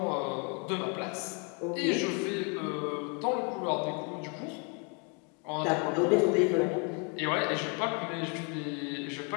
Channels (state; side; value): quieter; right; 35.6 dB